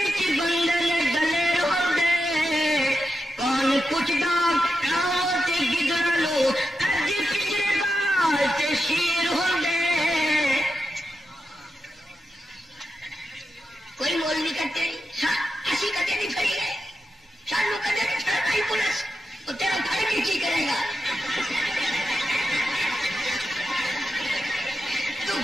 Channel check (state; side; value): normal; both; correlation 0.88